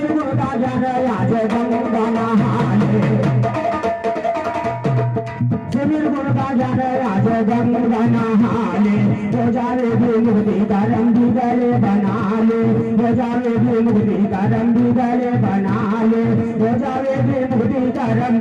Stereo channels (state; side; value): identical; both; correlation 1.00